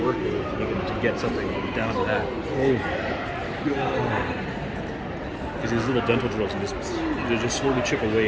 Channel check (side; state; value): both; identical; correlation 1.00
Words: it is to get something down to that. Because these little dental drills and they just slowly chip